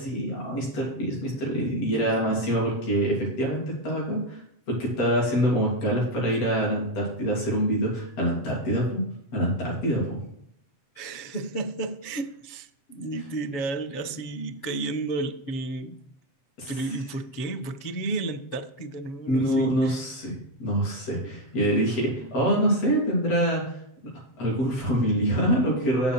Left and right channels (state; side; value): late; right; 7.2 ms